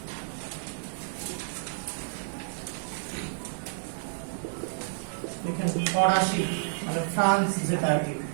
ফরাসি, মানে ফ্রান্স, যেটা আর কি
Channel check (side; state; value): left; silent; 58 dB below the other